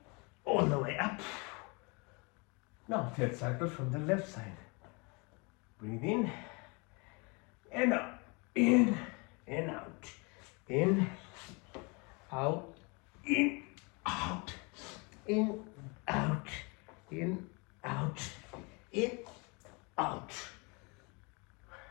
all the way up. Now third cycle from the left side. Breathe in and out. In and out. In, out, in, out, in, out, in, out, in, out.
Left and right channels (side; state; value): right; quieter; 30.2 dB